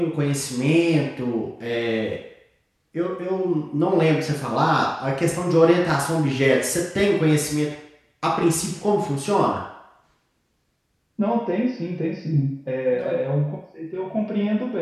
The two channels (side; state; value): both; identical; correlation 1.00